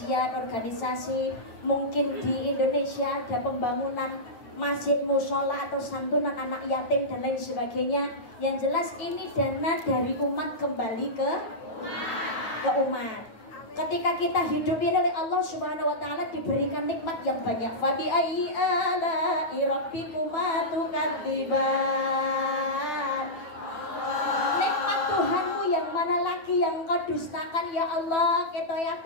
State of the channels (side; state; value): right; late; 9.1 ms